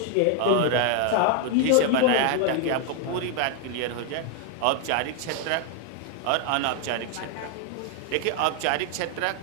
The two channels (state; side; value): different; both; correlation 0.00